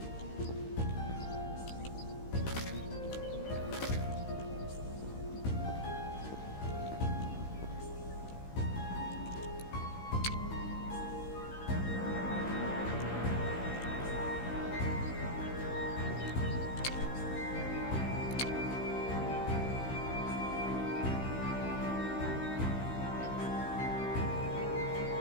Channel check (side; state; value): right; late; 16 ms